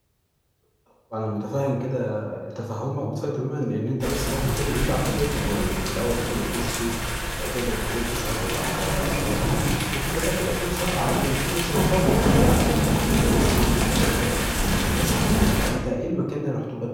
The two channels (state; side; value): identical; both; correlation 1.00